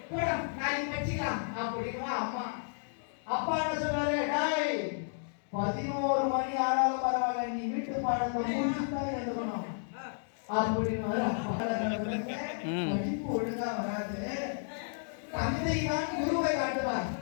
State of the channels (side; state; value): right; silent; digital silence